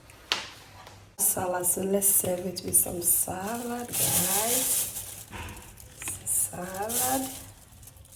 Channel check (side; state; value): both; identical; correlation 1.00